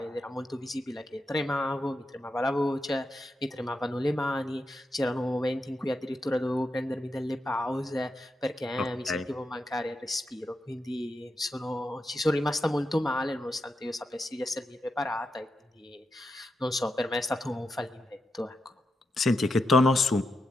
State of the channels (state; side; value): normal; both; correlation 0.86